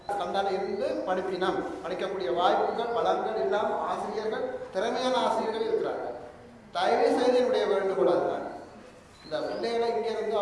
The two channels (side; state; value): both; identical; correlation 1.00